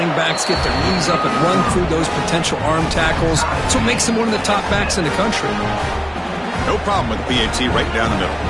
backs get their knees up and run through those potential arm tackles. So it makes him one of the top backs in the country. No problem with the PAT right down the middle.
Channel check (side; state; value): both; identical; correlation 1.00